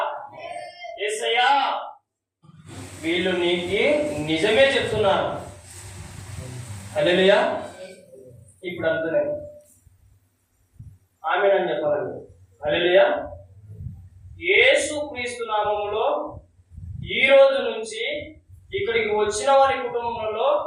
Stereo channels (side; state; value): both; identical; correlation 1.00